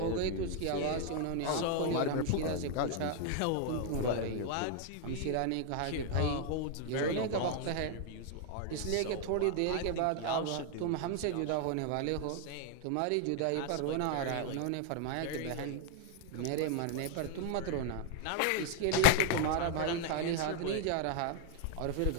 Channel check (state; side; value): different; both; correlation 0.00